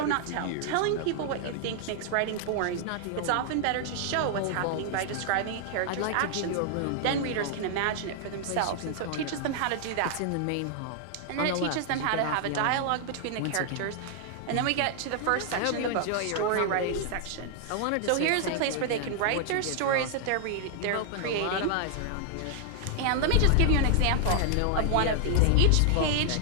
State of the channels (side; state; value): both; different; correlation 0.00